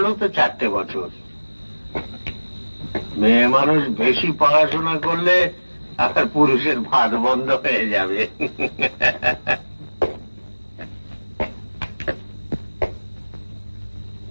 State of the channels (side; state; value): both; inverted; correlation -1.00